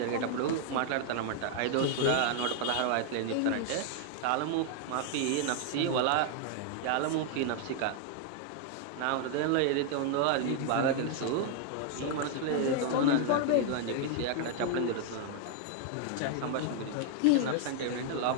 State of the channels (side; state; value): both; different; correlation 0.00